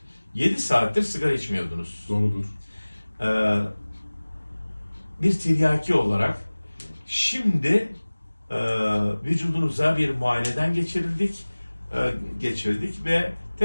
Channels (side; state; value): both; inverted; correlation -1.00